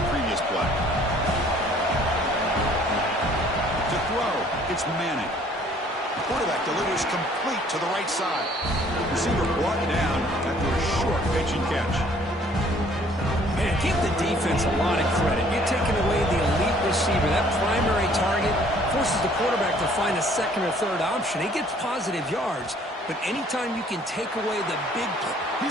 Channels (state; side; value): normal; both; correlation 0.58